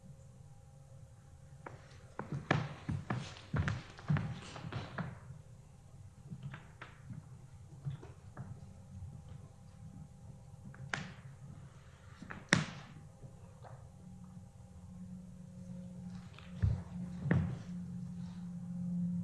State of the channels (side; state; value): both; identical; correlation 1.00